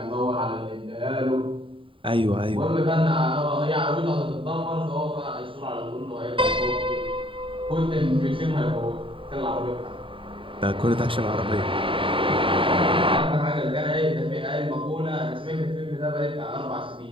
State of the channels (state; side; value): late; left; 0.25 ms